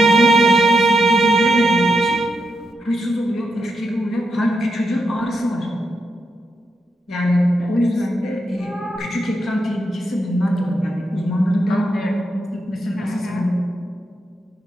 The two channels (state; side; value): normal; both; correlation 0.84